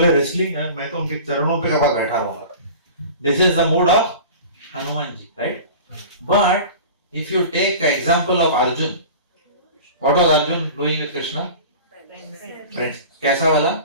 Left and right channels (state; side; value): inverted; both; correlation -0.38